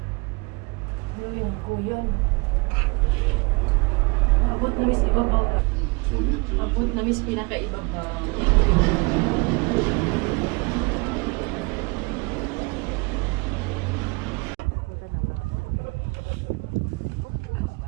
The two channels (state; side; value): quieter; left; 28.5 dB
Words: Yun ang kuyon. Abot na mis ibabaw. Abot na mis pinakaibabaw.